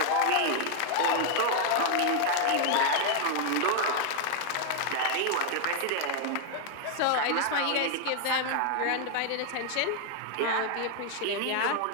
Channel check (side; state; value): both; different; correlation 0.00